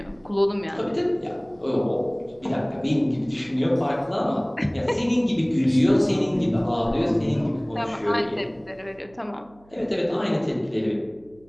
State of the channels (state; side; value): noise; right; hum, 29 dB below the sound